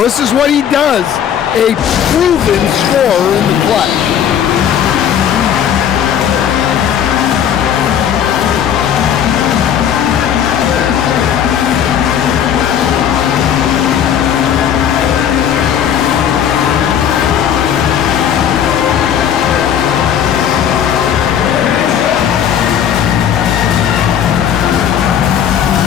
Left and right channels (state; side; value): quieter; right; 9.0 dB